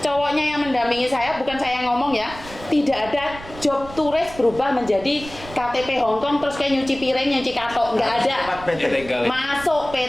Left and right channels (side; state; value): right; noise; rumble, 16 dB below the sound